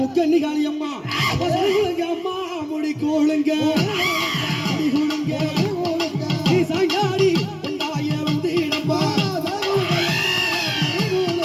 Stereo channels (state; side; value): identical; both; correlation 1.00